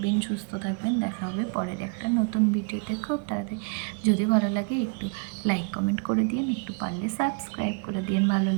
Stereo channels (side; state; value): left; quieter; 36.5 dB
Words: সুস্থ থাকবেন। দেখা হবে পরের একটা নতুন ভিডিওতে খুব তাড়াতাড়ি। যদি ভালো লাগে একটু লাইক কমেন্ট করে দিন, একটু পারলে সাবস্ক্রাইব করে দিন ভালো